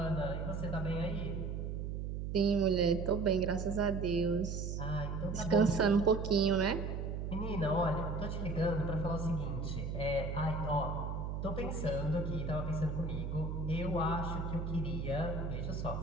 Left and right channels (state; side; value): noise; right; hum, 3 dB below the sound